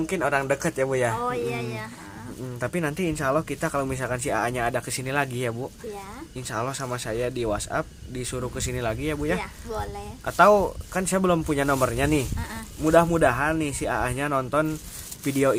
orang dekat ya Bu ya. Oh iya ya. Tapi nanti insya Allah kita kalau misalkan si A-nya ada kesini lagi ya Bu, Iya. insya Allah sama saya di WhatsApp disuruh kesini lagi ya Bu ya. Iya, boleh. Atau kan saya belum punya nomornya nih. Mudah-mudahan nih si A-nya nonton video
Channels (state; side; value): identical; both; correlation 1.00